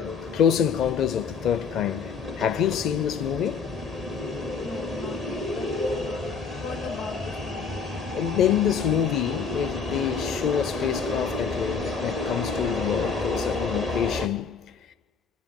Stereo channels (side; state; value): right; quieter; 5.9 dB